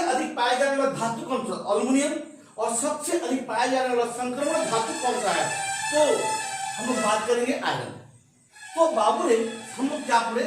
पाए जाने वाला धातु कौन सा? अल्युमिनियम। और सबसे अधिक पाया जाने वाला संक्रमण धातु कौन सा है, तो हम लोग बात करेंगे आयरन। तो बाबू रे, हम लोग क्या पढ़े?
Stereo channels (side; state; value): both; identical; correlation 1.00